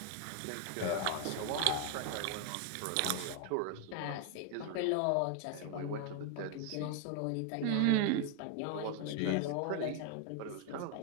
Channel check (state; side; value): different; both; correlation 0.00